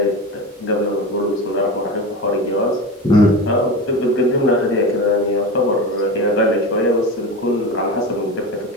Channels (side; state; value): both; normal; correlation 0.26